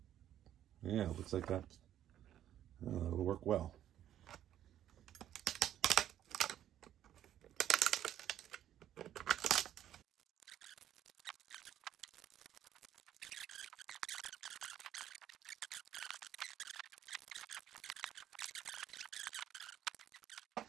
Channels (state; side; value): quieter; left; 11.3 dB